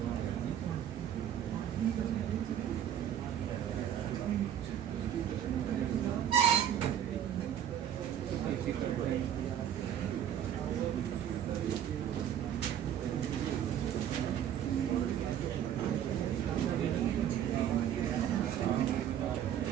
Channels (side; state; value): left; quieter; 10.1 dB